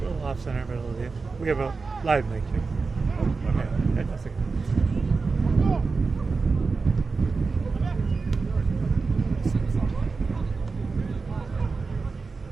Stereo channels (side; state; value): left; quieter; 4.4 dB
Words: a little off center, but it'll do. We have a live mic here. Yeah, that's okay.